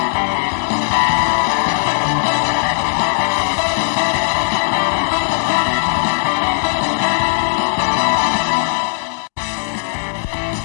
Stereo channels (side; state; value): right; silent; digital silence